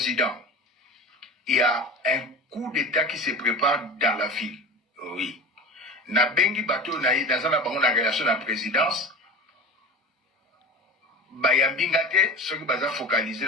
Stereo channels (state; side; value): normal; both; correlation 0.32